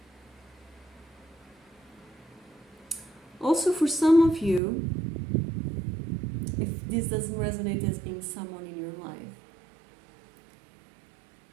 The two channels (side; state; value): left; drops out; at 4.6 s